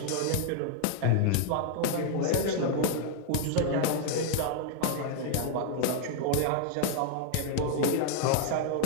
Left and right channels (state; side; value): different; both; correlation 0.00